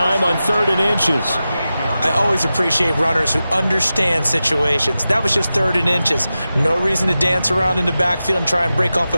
on 3rd and inches. I always appreciate runners who understand situations. That was just 3rd and inches. No reason to dance around in the backfield and try and break off a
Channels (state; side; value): inverted; both; correlation -0.93